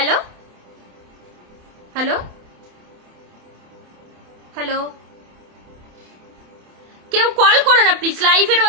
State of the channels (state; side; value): late; left; 27 ms